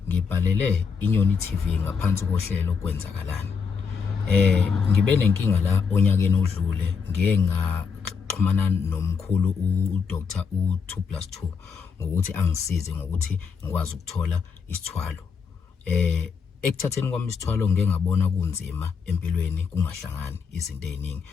ngibhalele iNyoni TV ngaphansi kohlelo kwenzakalani. Ngibe nenkinga la onyakeni odlule ngeke ngaxhumana nomkhulu uDr. u2+2 ngokuthi angisize ngokuthi ngikwazi ukuthola isithwalo. Ekuthatheni kwami isithwalo ngeke ngabona kunzima empilweni kungahlangani izinto eziningi.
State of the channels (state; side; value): quieter; right; 5.7 dB